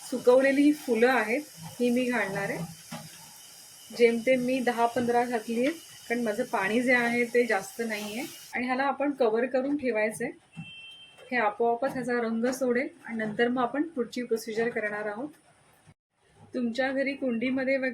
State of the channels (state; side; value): identical; both; correlation 1.00